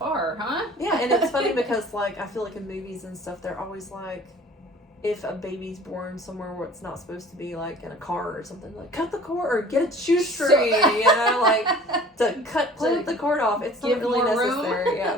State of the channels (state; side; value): normal; both; correlation 0.48